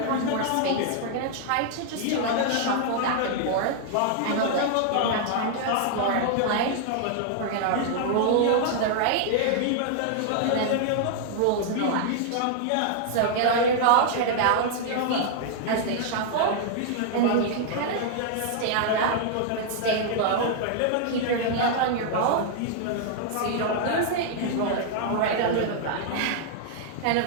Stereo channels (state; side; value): different; both; correlation 0.00